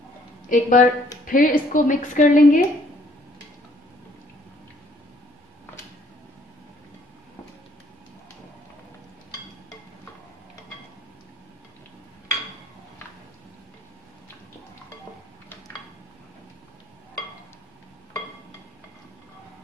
एक बार फिर इसको मिक्स कर लेंगे।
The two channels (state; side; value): normal; both; correlation 0.62